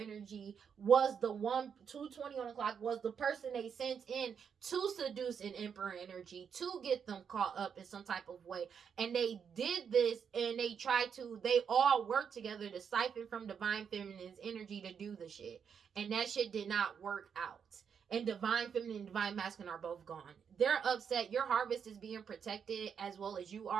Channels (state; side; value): quieter; left; 7.1 dB